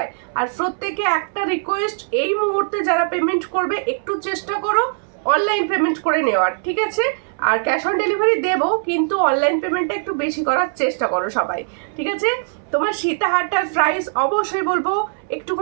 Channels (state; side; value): silent; left; 65 dB below the other